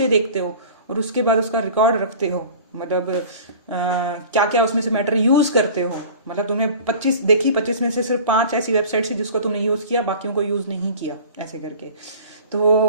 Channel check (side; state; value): both; inverted; correlation -0.42